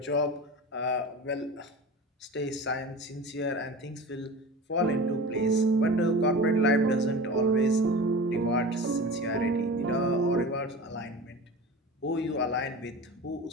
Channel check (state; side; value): normal; both; correlation 0.33